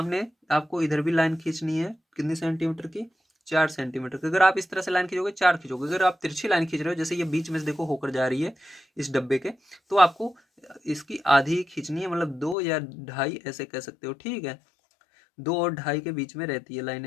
आपको इधर भी लाइन खींचनी है। कितनी सेंटीमीटर की, 4 सेंटीमीटर की। अगर आप इस तरह से लाइन खींचोगे 4 खींचोगे, अगर आप तिरछी लाइन खींच रहे हो जैसे ये बीच में से देखो होकर जा रही है इस डब्बे के, तो आपको इसकी आधी खींचनी है, मतलब 2 या 2.5 ऐसे कह सकते हो। ठीक है, 2 और 2.5 के बीच में रहती है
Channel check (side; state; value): right; drops out; at 12.6 s